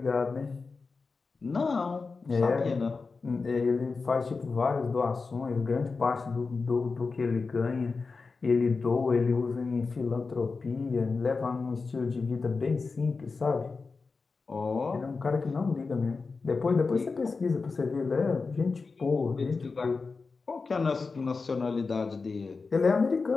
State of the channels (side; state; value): right; quieter; 4.4 dB